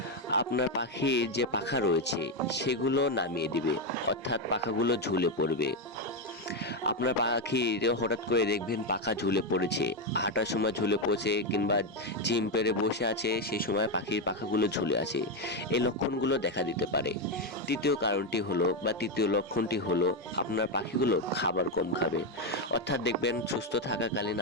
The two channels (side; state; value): both; normal; correlation 0.07